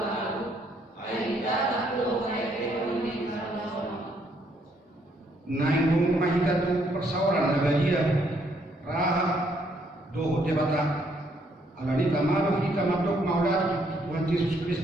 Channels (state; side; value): normal; both; correlation 0.70